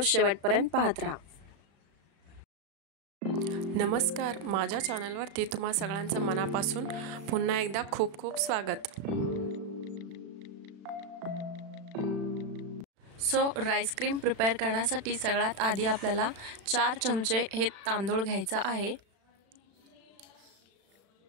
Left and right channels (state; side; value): late; left; 36 ms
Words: शेवटपर्यंत पाहत राहा। नमस्कार, माझ्या चॅनलवरती तुम्हा सगळ्यांचं मनापासून पुन्हा एकदा खूप खूप स्वागत। सो राईस क्रीम प्रिपेअर करण्यासाठी सगळ्यात आधी आपल्याला 4 चमचे हे तांदूळ घ्यायचा आहे।